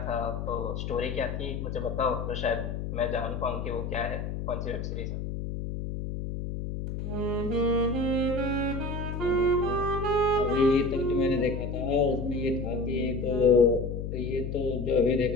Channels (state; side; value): noise; left; hum, 4 dB below the sound